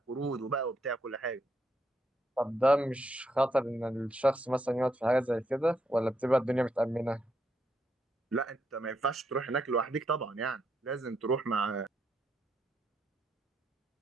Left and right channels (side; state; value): both; normal; correlation 0.78